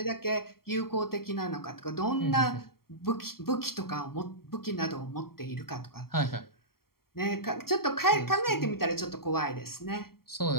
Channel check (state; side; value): late; right; 0.93 ms